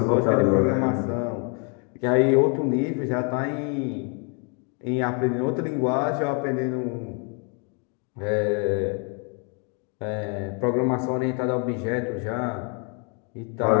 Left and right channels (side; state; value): right; quieter; 37.5 dB